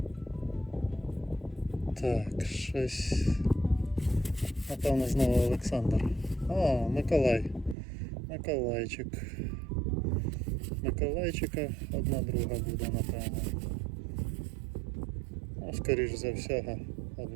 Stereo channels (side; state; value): left; drops out; at 7.8 s